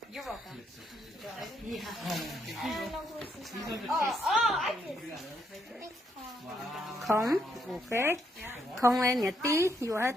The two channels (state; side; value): normal; both; correlation 0.75